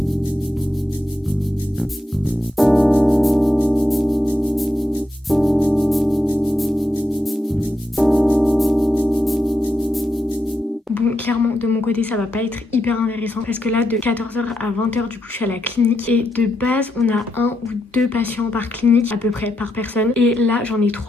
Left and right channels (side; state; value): both; normal; correlation 0.83